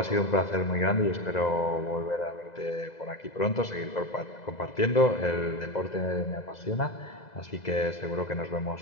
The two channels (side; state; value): right; late; 2.0 ms